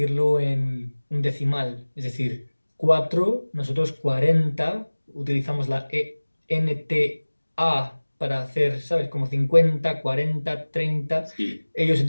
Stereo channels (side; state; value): both; inverted; correlation -1.00